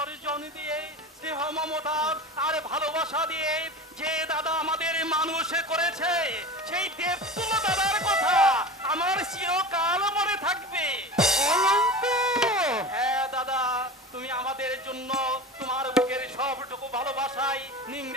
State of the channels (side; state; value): both; normal; correlation 0.31